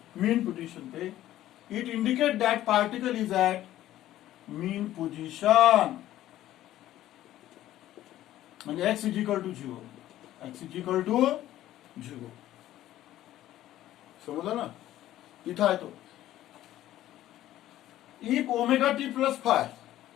मीन पोजीशन पे। It indicate that particle is at mean position म्हणजे x is equal to 0 x is equal to 0 समझा ना इथं आहे तो। If omega T plus phi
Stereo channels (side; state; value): right; quieter; 13.7 dB